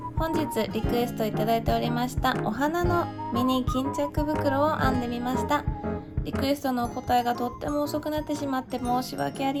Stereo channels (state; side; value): identical; both; correlation 1.00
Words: 本日リクエストいただいておりましたお花のミニ巾着袋を編んでみました。リクエストのお答えがとっても遅くなってしまって申し訳あ